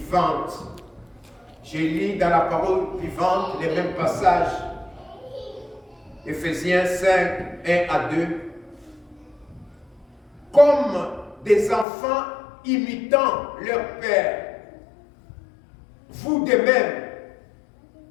Je lis dans la parole vivante les mêmes passages. Éphésiens 5, 1 à 2. Comme des enfants imitant leur père, vous de même,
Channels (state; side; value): drops out; right; at 11.9 s